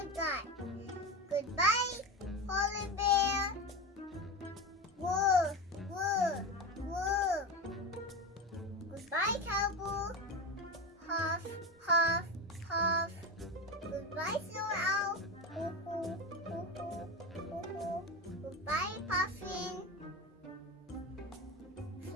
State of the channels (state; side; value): normal; both; correlation 0.22